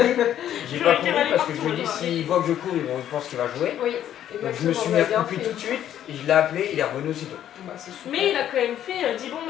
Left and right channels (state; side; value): quieter; right; 11.0 dB